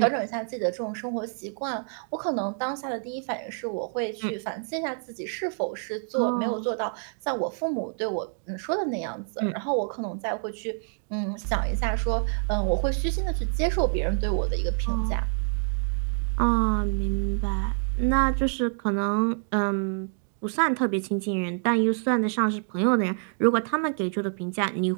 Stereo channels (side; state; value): left; silent; 60 dB below the other